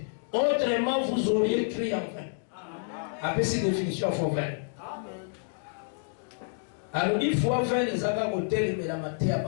autrement vous auriez crié en vain. Après cette définition, il faut vain. Alors, il faut vain les avoir au tel mais la matière à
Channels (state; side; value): silent; right; digital silence